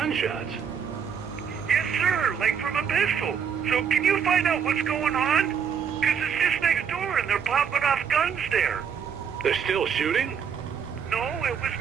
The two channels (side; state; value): left; quieter; 7.2 dB